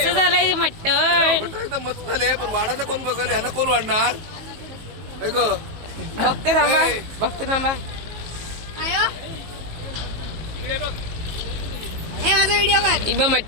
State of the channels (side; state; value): left; late; 19 ms